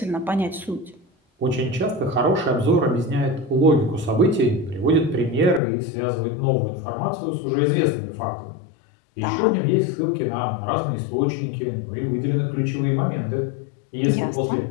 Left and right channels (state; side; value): drops out; right; at 5.6 s